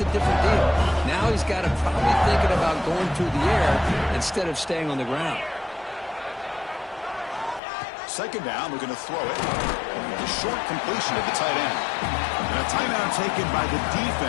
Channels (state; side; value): drops out; right; at 7.6 s